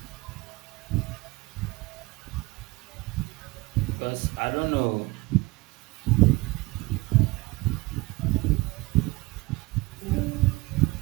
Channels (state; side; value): quieter; left; 22.5 dB